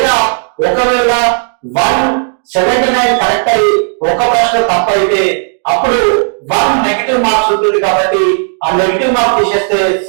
ఒకవేళ 179 కరెక్ట్ అయ్యి ఒక ప్రశ్న తప్పైతే అప్పుడు 1 నెగిటివ్ మార్క్స్ ఉంటుంది. కాబట్టి ఆ నెగిటివ్ మార్క్స్ తీసేస్తే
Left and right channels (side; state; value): left; silent; 68 dB below the other